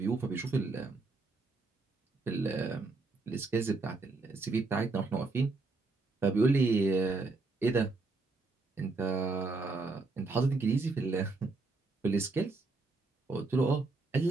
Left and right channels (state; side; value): quieter; left; 3.7 dB